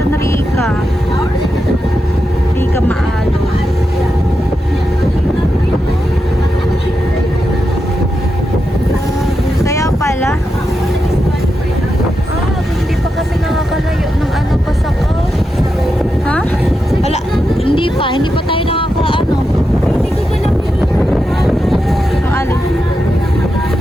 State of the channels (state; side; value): normal; both; correlation 0.87